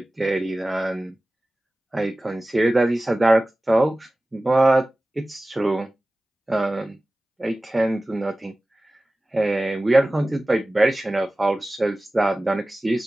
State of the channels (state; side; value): normal; both; correlation 0.97